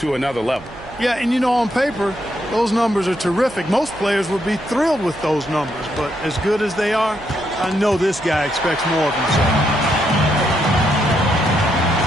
another level. Yeah, and you know, on paper, those numbers are terrific. Most players would be thrilled with those numbers, but as good as they are, I know this guy expects more of himself.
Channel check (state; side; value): noise; right; hum, 19 dB below the sound